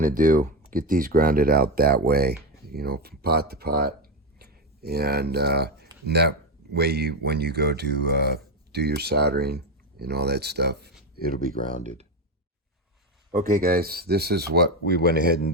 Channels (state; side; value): normal; both; correlation 0.12